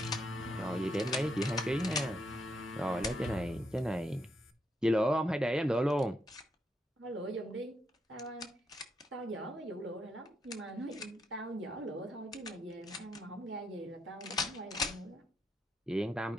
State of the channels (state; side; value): normal; both; correlation 0.79